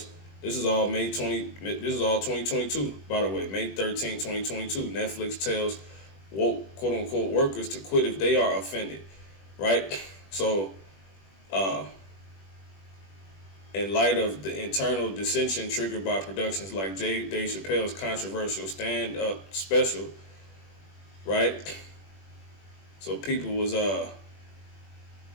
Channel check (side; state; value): right; late; 21 ms